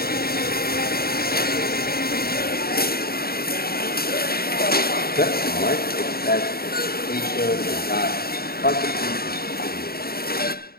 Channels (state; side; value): late; right; 0.45 ms